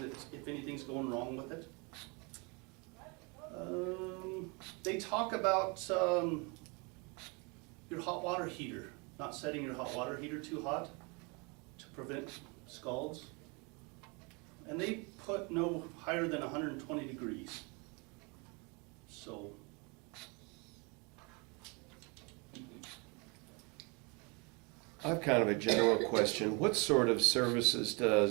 if anything's going wrong with it. They talk about your hot water heater, not setting your hot water heater too hot to prevent scalds. And they put no higher than 120 degrees. So, I have kind of a general question. What sort of services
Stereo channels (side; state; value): left; quieter; 30.6 dB